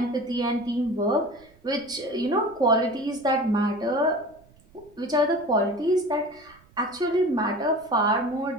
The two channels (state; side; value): noise; right; rumble, 29 dB below the sound